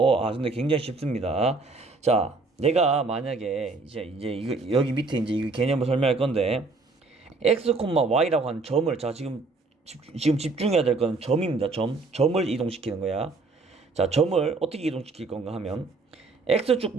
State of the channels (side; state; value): left; quieter; 3.7 dB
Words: 근데 굉장히 쉽습니다. 자, 내가 만약에 이제 이거 여기 밑에 이제 이 개념을 설명할 건데 X, Y라고 하는 점을 지금 집중해야 될 건 점입니다. 점을 이동시키는 거야. 자, 점을 어떻게 이동시킬 건가 하면 X축